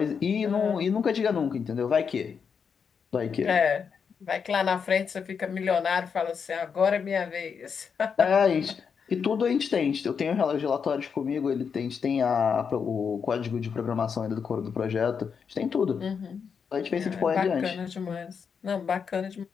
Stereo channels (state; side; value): quieter; right; 6.4 dB